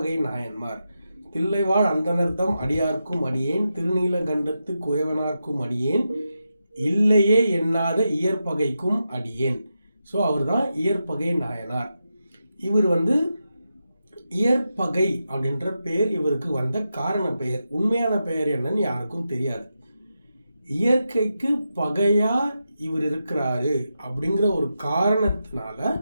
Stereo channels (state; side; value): inverted; both; correlation -0.88